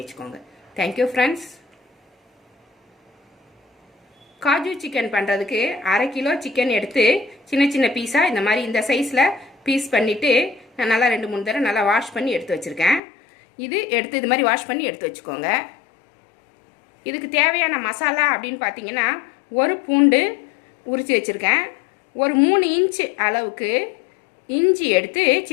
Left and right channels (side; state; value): right; drops out; at 13.0 s